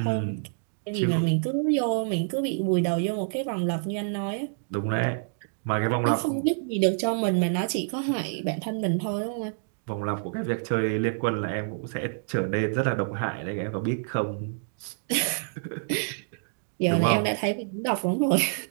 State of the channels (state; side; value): silent; left; digital silence